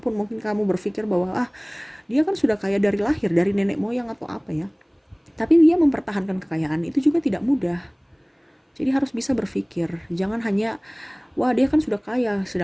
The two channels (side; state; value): both; identical; correlation 1.00